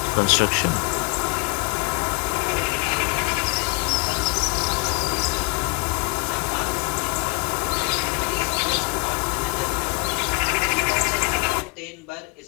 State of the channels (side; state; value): right; quieter; 30.0 dB